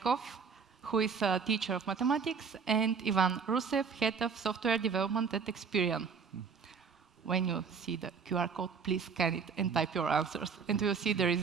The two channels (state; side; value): quieter; left; 5.8 dB